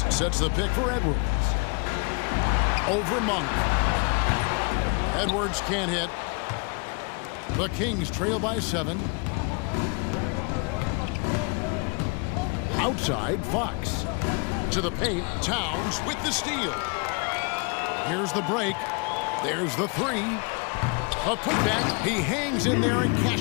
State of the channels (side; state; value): right; quieter; 32.3 dB